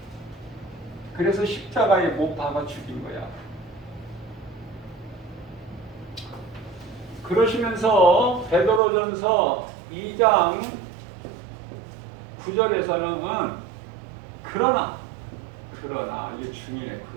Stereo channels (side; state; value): left; drops out; at 8.8 s